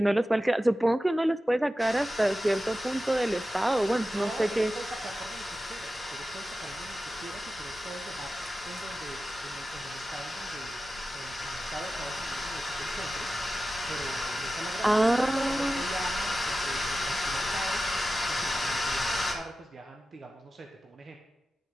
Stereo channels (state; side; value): normal; both; correlation 0.94